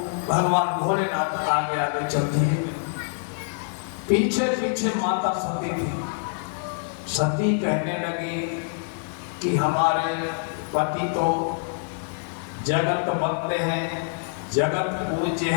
भगवान भोलेनाथ आगे आगे चल दिए। पीछे पीछे माता सती थी। सती कहने लगी कि हमारे पति तो जगत बंदे हैं, जगत पूज्य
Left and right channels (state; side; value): silent; right; digital silence